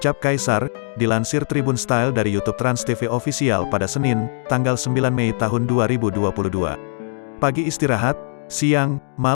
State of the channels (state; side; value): silent; right; digital silence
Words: Kaisar, dilansir Tribun Style dari YouTube Trans TV Official pada Senin, tanggal 9 Mei tahun 2022. "Pagi istirahat, siang,